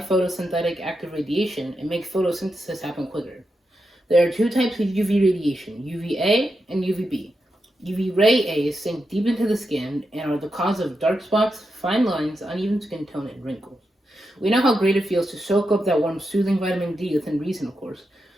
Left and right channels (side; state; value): both; normal; correlation 0.87